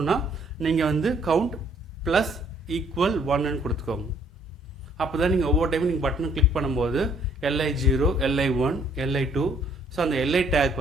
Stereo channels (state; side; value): normal; both; correlation 0.63